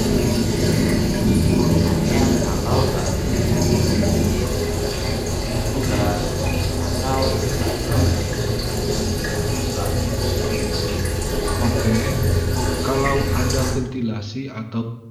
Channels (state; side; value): identical; both; correlation 1.00